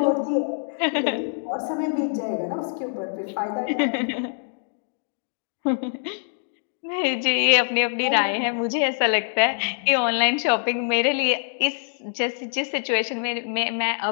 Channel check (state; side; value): silent; right; digital silence